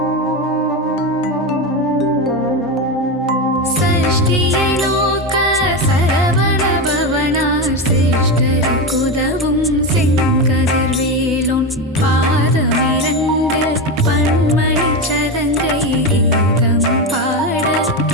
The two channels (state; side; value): normal; both; correlation 0.16